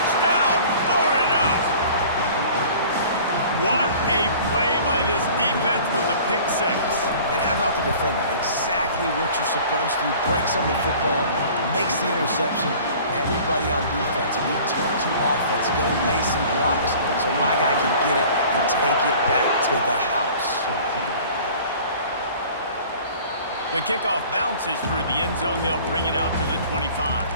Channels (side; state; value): both; inverted; correlation -0.47